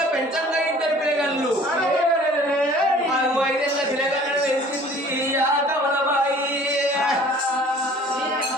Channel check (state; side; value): normal; both; correlation 0.50